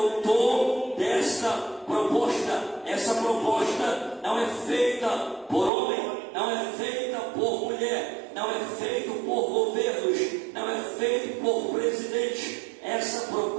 dessa proposta. Essa proposta não é feita por homem, não é feita por mulher, não é feita por governos, não é feita por presidente. Essa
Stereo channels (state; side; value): drops out; left; at 5.7 s